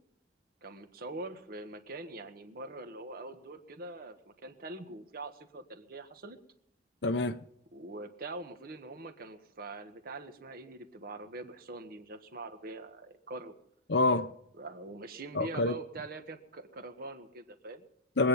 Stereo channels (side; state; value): both; normal; correlation -0.18